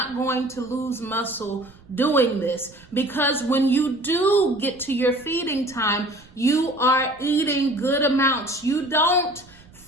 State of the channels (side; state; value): right; noise; rumble, 25 dB below the sound